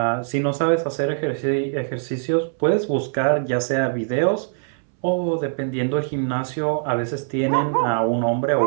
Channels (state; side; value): silent; left; 64 dB below the other